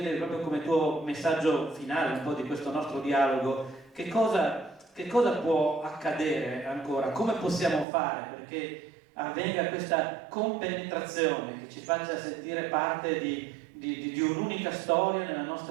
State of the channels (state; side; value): drops out; left; at 7.9 s